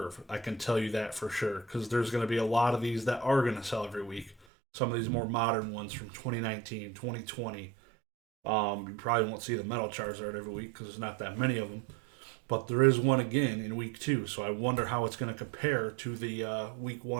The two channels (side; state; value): left; drops out; at 4.4 s